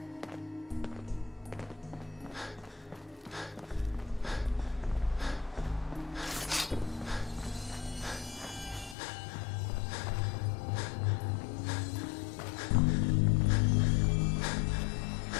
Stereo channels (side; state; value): right; drops out; at 9.0 s